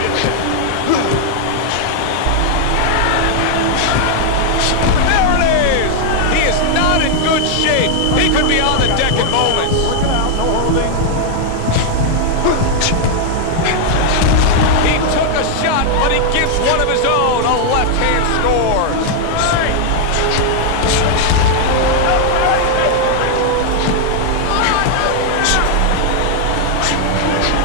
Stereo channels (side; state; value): both; different; correlation 0.00